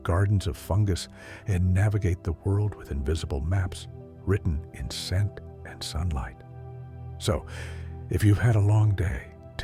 of fungus, and navigate the world with invisible maps written in scent and sunlight. So, if you've had a long day,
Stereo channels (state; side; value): identical; both; correlation 1.00